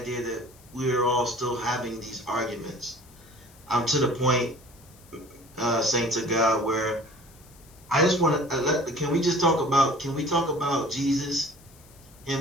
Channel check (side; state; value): left; noise; hiss, 26 dB below the sound